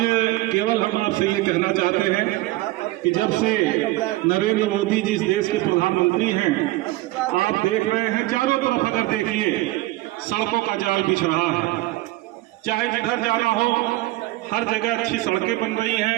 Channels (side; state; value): left; quieter; 18.5 dB